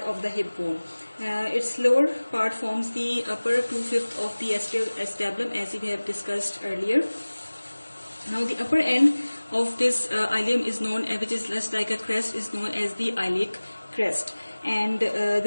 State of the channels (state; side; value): inverted; both; correlation -1.00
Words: of the hip bone. Its lower part forms the upper 2/5 of the acetabulum, as we have discussed earlier. Now, the upper end of this ilium is known, which is just like a crest, is known as the iliac crest, and